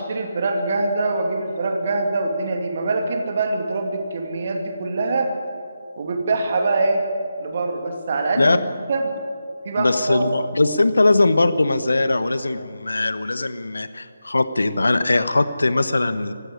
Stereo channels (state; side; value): inverted; both; correlation -0.88